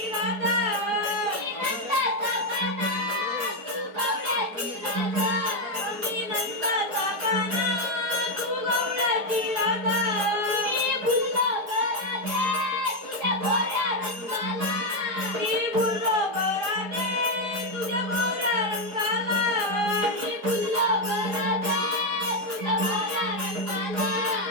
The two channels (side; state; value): left; late; 4.8 ms